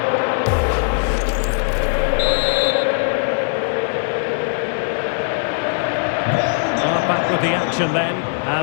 Well, back with the action then,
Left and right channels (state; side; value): silent; right; digital silence